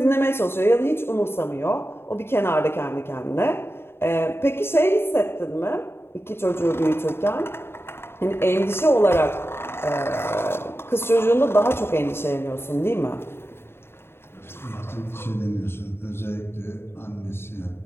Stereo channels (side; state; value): right; late; 0.11 ms